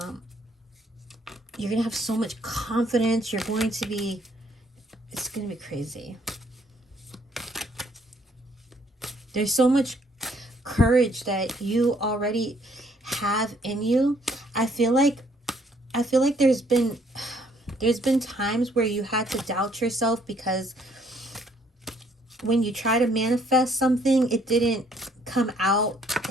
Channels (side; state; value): both; normal; correlation 0.65